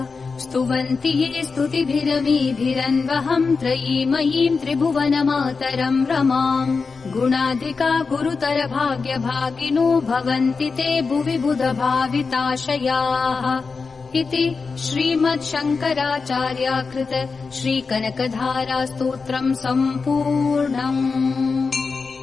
स्तुवन्ति ये स्तुतिभिरमीभिरन्वहम् त्रयीमयीम् त्रिभुवनमातरम् रमाम् गुणाधिका गुरुतर भाग्यभागिनो भवन्ति ते भुवि बुधभाविताशयाः इति श्रीमच्छङ्कराचार्याकृत श्रीकनकधारा स्तोत्रम् सम्पूर्णम्।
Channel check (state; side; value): quieter; right; 4.7 dB